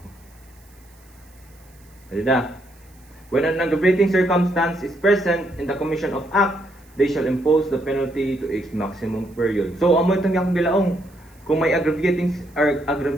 When an aggravating circumstance is present in the commission of act, they shall impose the penalty to its maximum period. So amo itong yakong gilaong. Kung may aggravating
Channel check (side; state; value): right; noise; hiss, 30 dB below the sound